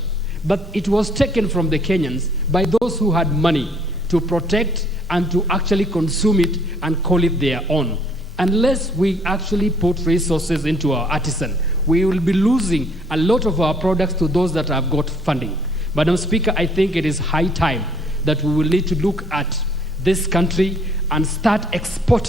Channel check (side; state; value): both; normal; correlation 0.62